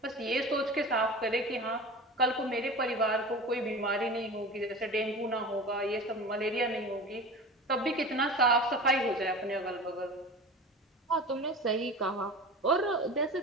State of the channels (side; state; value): both; normal; correlation 0.33